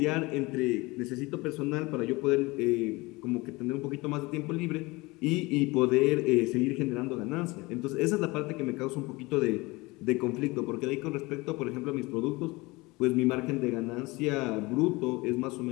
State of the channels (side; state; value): right; quieter; 23.1 dB